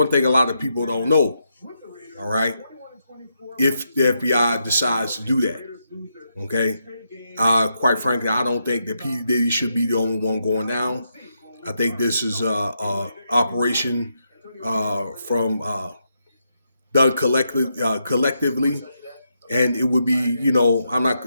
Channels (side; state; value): both; inverted; correlation -0.82